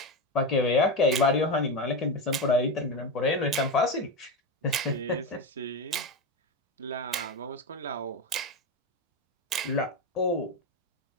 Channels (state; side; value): normal; both; correlation 0.16